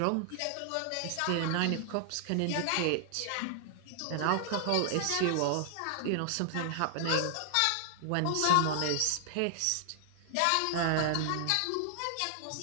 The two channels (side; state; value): both; different; correlation 0.00